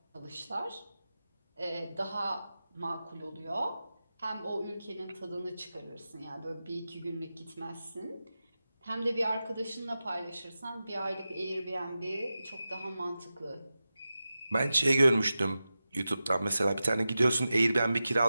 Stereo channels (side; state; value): both; inverted; correlation -0.93